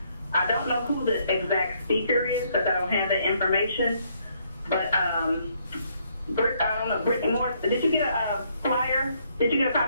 I don't know who the exact speaker is because I don't have that information. But I don't know, Brittany Moore, did you get a flyer? Did you get a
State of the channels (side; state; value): both; inverted; correlation -0.70